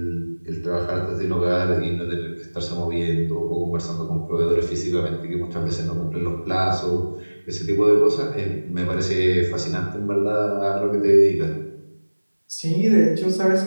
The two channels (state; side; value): inverted; both; correlation -1.00